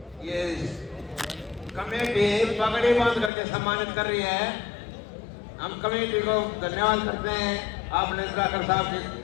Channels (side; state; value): right; drops out; at 3.3 s